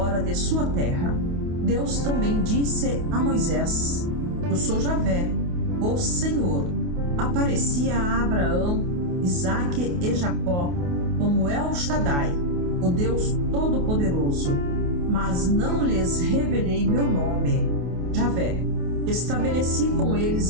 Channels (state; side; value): late; left; 28 ms